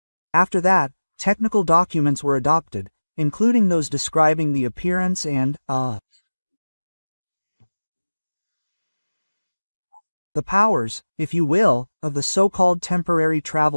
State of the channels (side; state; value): both; inverted; correlation -1.00